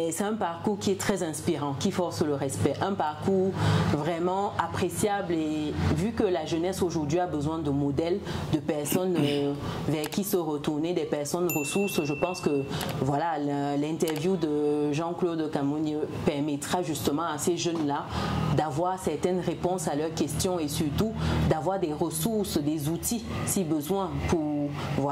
c'est un parcours qui est très inspirant, qui force le respect. Un parcours vraiment appréciable et vu que la jeunesse aujourd'hui a besoin de modèles, de personnes vers qui se retourner, des personnes ressources, je pense que voilà, l'interview de Jean-Claude Kamounié permettra justement à ces jeunes-là d'avoir certaines réponses à leurs questions et surtout d'avoir des ressources, des outils si besoin pour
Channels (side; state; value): both; identical; correlation 1.00